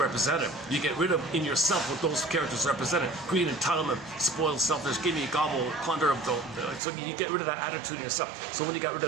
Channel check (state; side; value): drops out; left; at 6.8 s